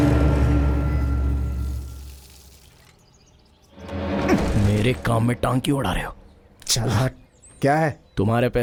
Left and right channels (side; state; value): both; identical; correlation 1.00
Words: मेरे काम में टांग क्यों उड़ा रहे हो? चल हट। क्या है? तुम्हारे